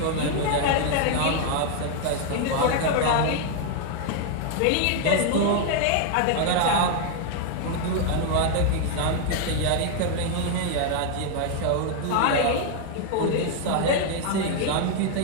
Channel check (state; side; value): different; both; correlation 0.00